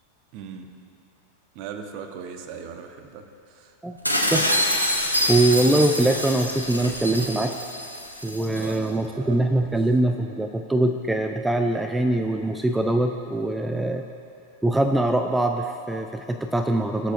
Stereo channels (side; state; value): both; normal; correlation 0.57